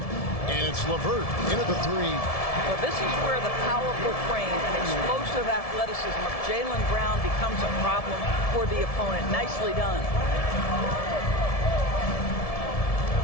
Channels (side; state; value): right; late; 1.7 ms